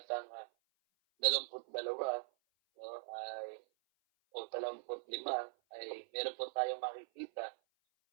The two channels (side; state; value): left; silent; 50 dB below the other